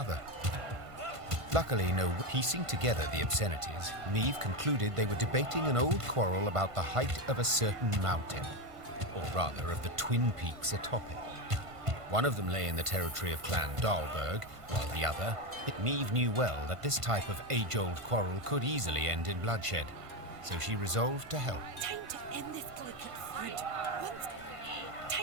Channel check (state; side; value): late; left; 1.5 ms